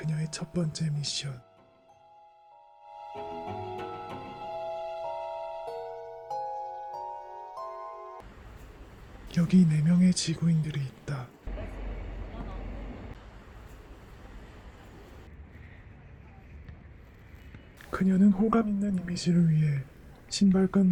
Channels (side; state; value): both; identical; correlation 1.00